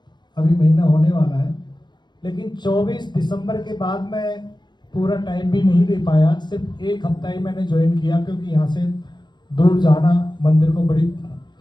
अभी महीना होने वाला है, लेकिन 24 दिसंबर के बाद मैं पूरा टाइम भी नहीं दे पाया, सिर्फ एक हफ्ता ही मैंने ज्वाइन किया, क्योंकि यहाँ से दूर जाना मंदिर को बड़ी,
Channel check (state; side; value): late; right; 0.21 ms